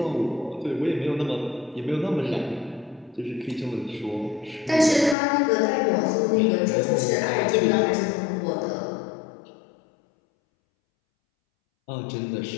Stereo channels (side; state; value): right; drops out; at 5.2 s